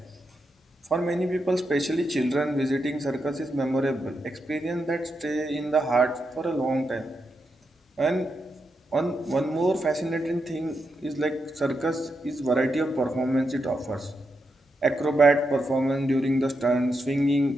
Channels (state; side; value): normal; both; correlation 0.84